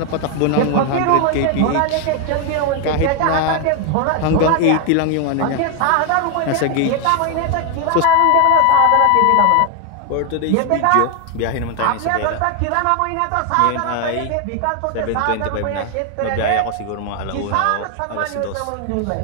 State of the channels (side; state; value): both; different; correlation 0.01